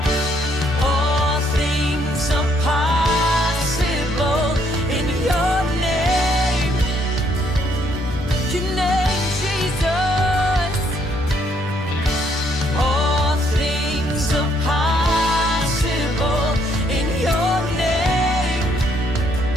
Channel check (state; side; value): normal; both; correlation 0.70